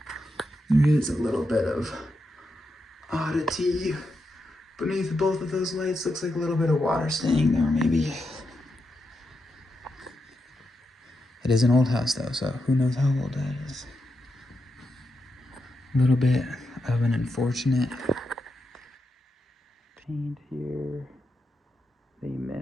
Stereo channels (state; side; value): normal; both; correlation 0.86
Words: There is a little bit of oddity beneath both of those lights. Looks like a little bit of water staying there, maybe. It is an old house, though, so who knows how old that is. A little bit of an unfortunate paint here. They